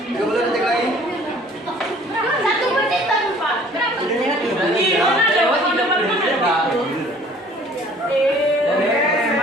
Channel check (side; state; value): both; normal; correlation 0.53